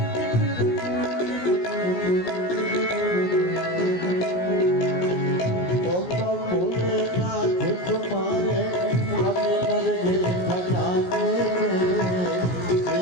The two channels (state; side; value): late; right; 17 ms